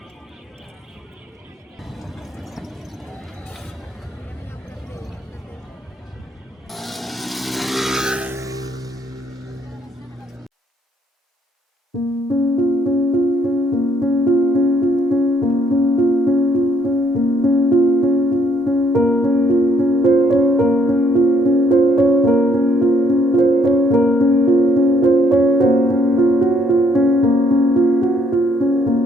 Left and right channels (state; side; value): normal; both; correlation 0.68